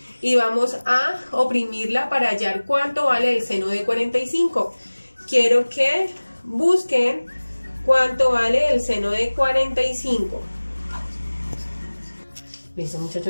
y vamos a oprimirla para hallar cuánto vale el seno de 45. Quiero que busquen cuánto vale el seno de 45. Listo,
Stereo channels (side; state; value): both; inverted; correlation -1.00